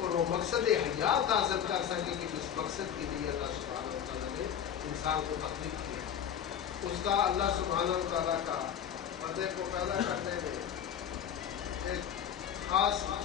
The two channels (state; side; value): quieter; right; 9.0 dB